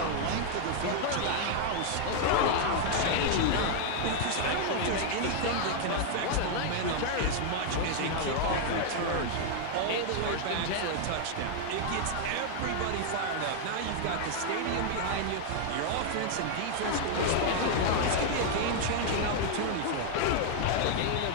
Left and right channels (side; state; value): both; different; correlation 0.00